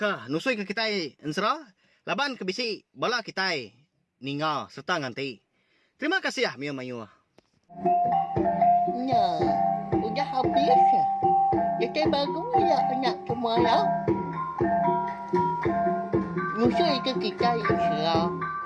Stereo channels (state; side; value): identical; both; correlation 1.00